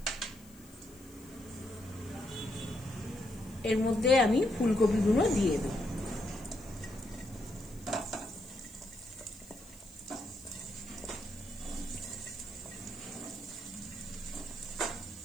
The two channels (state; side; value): noise; left; hiss, 23 dB below the sound